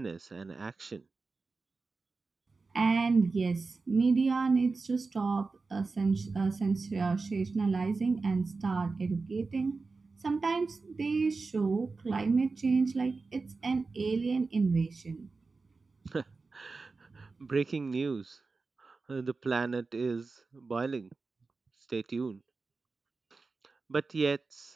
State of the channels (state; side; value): quieter; left; 4.1 dB